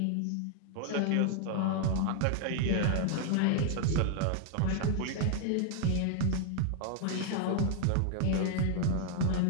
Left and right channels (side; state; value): both; different; correlation 0.00